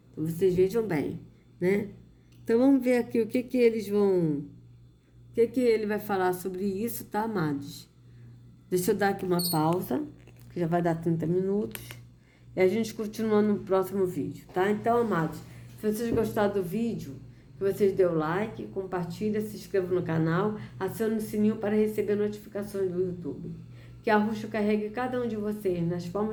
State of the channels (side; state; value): both; identical; correlation 1.00